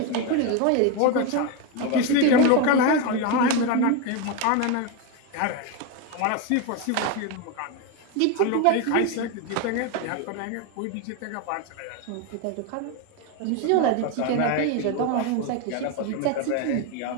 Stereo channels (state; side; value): different; both; correlation 0.02